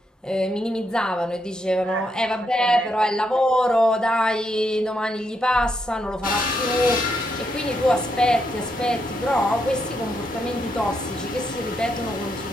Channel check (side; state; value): both; normal; correlation 0.79